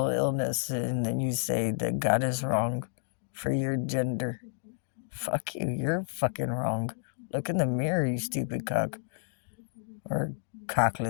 illness, and then you say that God is wrong for your gender. Fuck you, you're fucking wrong. Look in the mirror, you stupid cock. Or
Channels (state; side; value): silent; right; digital silence